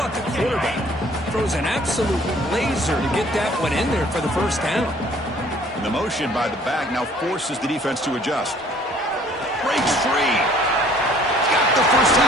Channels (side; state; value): both; normal; correlation 0.56